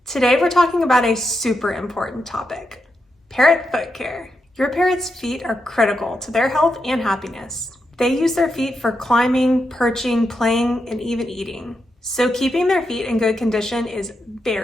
Today we're talking about a super important topic, parrot foot care. Your parrot's feet are critical to their health and happiness. They use their feet for climbing, perching, playing, and even eating. So keeping their feet in good condition is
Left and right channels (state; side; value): normal; both; correlation 0.85